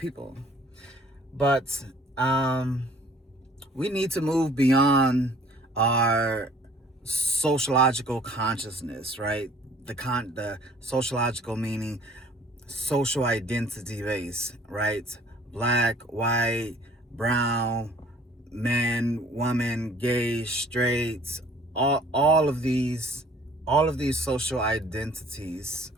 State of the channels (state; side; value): normal; both; correlation 0.54